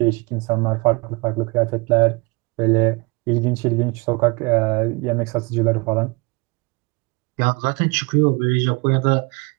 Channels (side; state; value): left; quieter; 27.4 dB